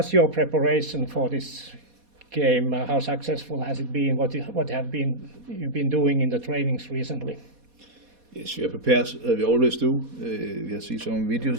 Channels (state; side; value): late; left; 4.2 ms